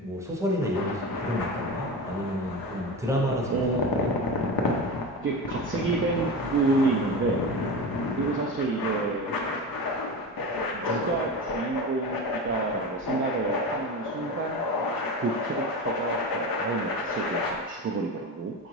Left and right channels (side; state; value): both; normal; correlation 0.25